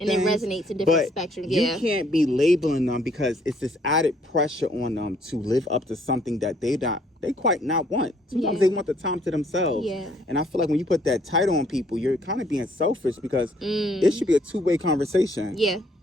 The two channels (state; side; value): normal; both; correlation 0.65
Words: things. And it resonates to different spectrums. You can't be labeling them because it's this added pressure on them to live up to something that they quite not want. Sometimes they want the time to themselves. Yeah. And I feel like when you put that title on people, you're kind of being selfish because it should be a two-way conversation. Yeah.